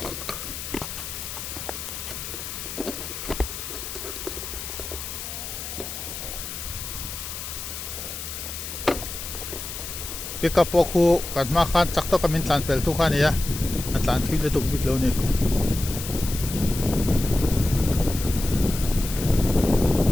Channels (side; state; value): left; noise; hiss, 8 dB below the sound